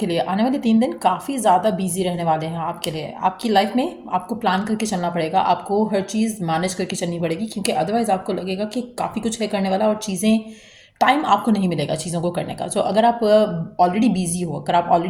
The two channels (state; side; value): identical; both; correlation 1.00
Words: लिए आने वाले 3 दिन काफ़ी ज़्यादा बिजी रहने वाले हैं आपके लिए। आपकी लाइफ में आपको प्लान करके चलना पड़ेगा, आपको हर चीज़ मैनेज करके चलनी पड़ेगी, क्योंकि अदरवाइज़ आपको लगेगा कि काफ़ी कुछ है करने वाला और चीज़ें टाइम आपको नहीं मिलेगा चीज़ों को करने का। सो अगर आप ऑलरेडी बिजी हो, अगर आप